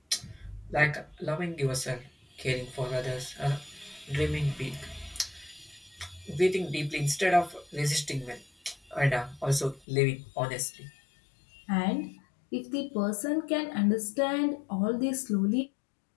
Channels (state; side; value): drops out; right; at 9.9 s